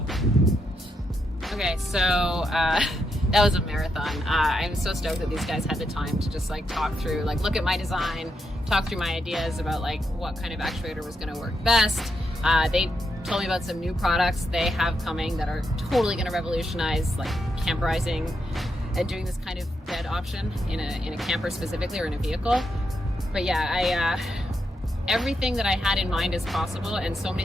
Okay, so that was a marathon. I'm so stoked that these guys had the time to just like talk through, like look at my design, talk through my ideas about like what kind of actuator was gonna work best. They told me about some new products they have coming that are totally gonna revolutionize like camperizing and doing this kind of bed option in a camper specifically, or in a vehicle. But yeah, everything that I had in mind is possible, and so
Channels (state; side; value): normal; both; correlation 0.82